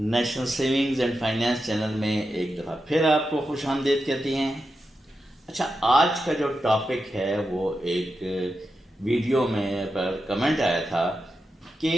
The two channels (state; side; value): normal; both; correlation 0.89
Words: National savings and finance channel میں ایک دفعہ پھر آپ کو خوش آمدید کہتے ہیں. اچھا، آج کا جو ٹاپک ہے وہ ایک ویڈیو میں پر کمنٹ آیا تھا